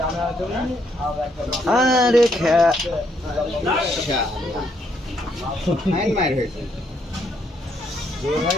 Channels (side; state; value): both; normal; correlation 0.73